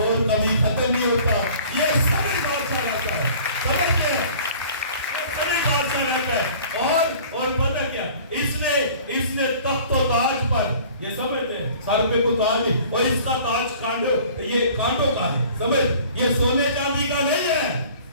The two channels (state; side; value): inverted; both; correlation -0.48